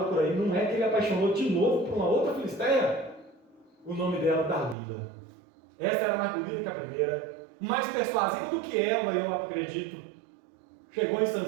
por aí. Não é que ele apaixonou de novo por uma outra filisteia? O nome dela, Dalila. Essa era mais bonita que a primeira, mais persuasiva do que ela, eu acredito. Chegou em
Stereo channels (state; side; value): drops out; left; at 4.8 s